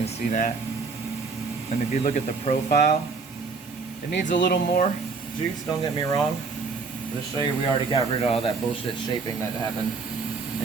see that. And if you look at the profile, it needs a little more juice, don't get me wrong. But to show you, we already got rid of all that bullshit shaping that happened.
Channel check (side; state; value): left; quieter; 4.6 dB